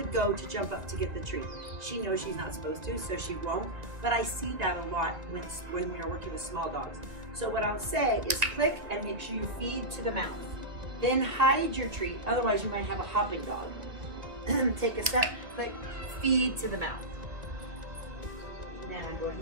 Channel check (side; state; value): left; late; 2.2 ms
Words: go to jump up to get the treat. She knows she's not supposed to, so she won't, but I see that a lot when we are working with small dogs. So what I'll say is click and make sure you feed to the mouth. Then hide your treat, otherwise you might have a hopping dog. Take a step, click, feed to the mouth. Then I'm going